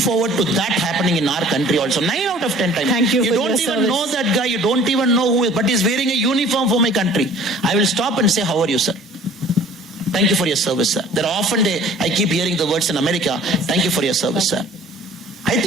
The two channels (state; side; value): normal; both; correlation 0.50